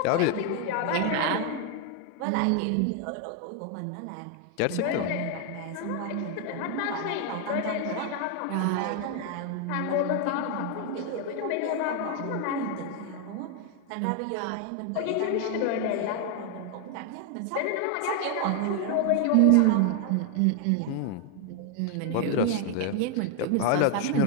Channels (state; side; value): different; both; correlation 0.00